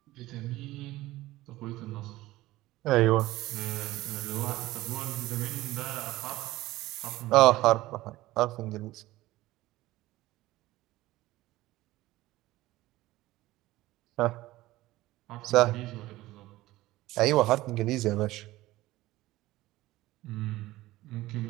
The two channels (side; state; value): left; quieter; 17.4 dB